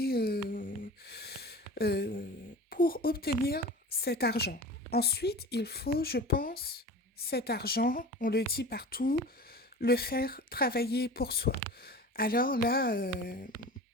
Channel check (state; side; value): normal; both; correlation 0.36